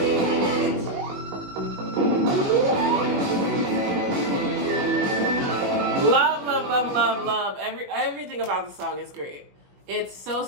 love. Everything about the song is great. It's so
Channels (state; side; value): late; left; 21 ms